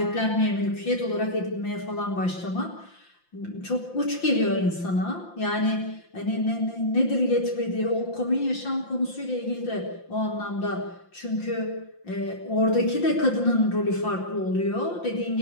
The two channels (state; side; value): late; right; 5.8 ms